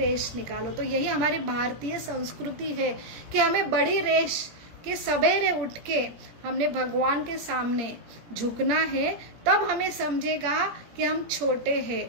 निकालो। तो यही हमारी भारतीय संस्कृति है कि हमें बड़ी रेश के सवेरे उठ के हमने भगवान के सामने झुकना है, तब हमें समझेगा कि हम छोटे हैं।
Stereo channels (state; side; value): late; left; 17 ms